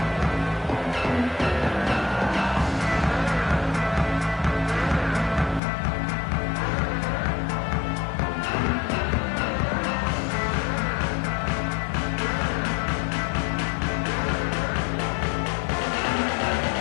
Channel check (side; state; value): right; drops out; at 5.6 s